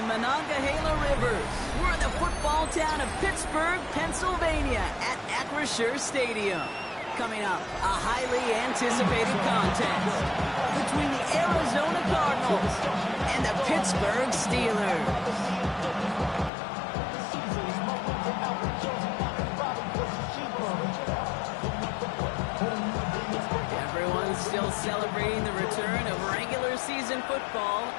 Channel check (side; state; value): right; drops out; at 16.5 s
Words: Monongahela Rivers, we're in the football town of Pittsburgh, Pennsylvania at Acrisure Stadium. Coming up, a highly anticipated contest between the Arizona Cardinals and the Pittsburgh Steelers. Everyone's still celebrating the return of regular season football,